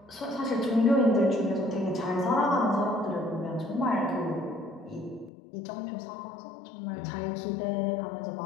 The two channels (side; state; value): right; drops out; at 5.3 s